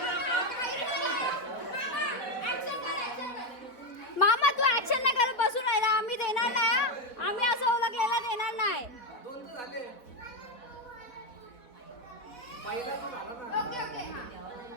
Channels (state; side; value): late; right; 3.9 ms